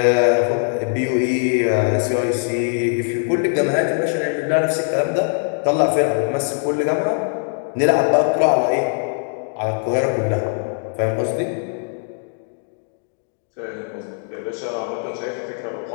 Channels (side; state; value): right; silent; 65 dB below the other